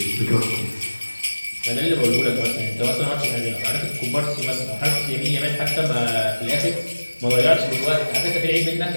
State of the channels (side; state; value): both; inverted; correlation -1.00